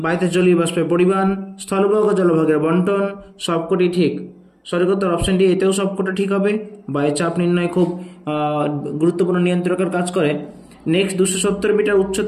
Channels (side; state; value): both; identical; correlation 1.00